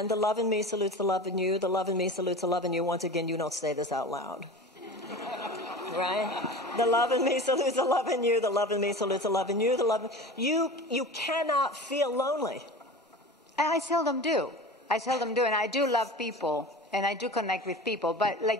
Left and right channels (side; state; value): both; normal; correlation 0.34